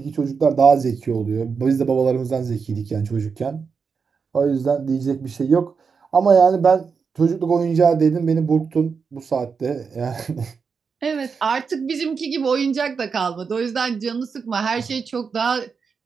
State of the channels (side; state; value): left; quieter; 5.6 dB